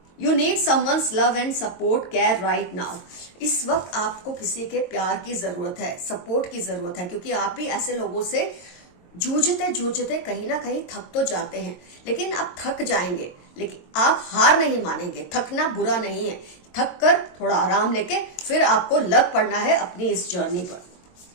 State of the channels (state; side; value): late; right; 22 ms